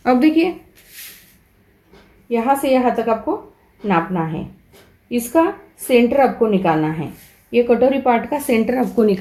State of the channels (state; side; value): identical; both; correlation 1.00